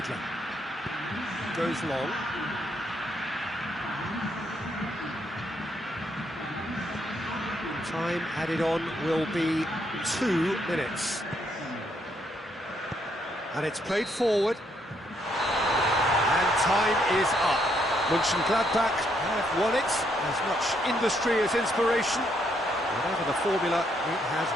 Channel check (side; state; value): both; normal; correlation 0.73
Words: Goes long. Time added on will be 2 minutes. And it's played forward. And time is up. Mönchengladbach have won it. As much industry as inspiration. Whatever the formula, it has